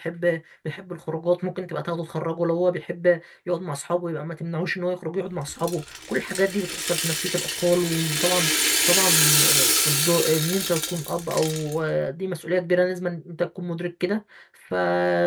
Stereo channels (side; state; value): both; identical; correlation 1.00